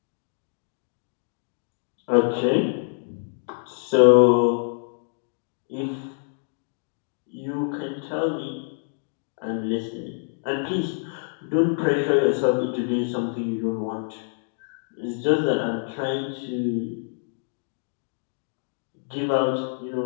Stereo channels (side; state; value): right; silent; digital silence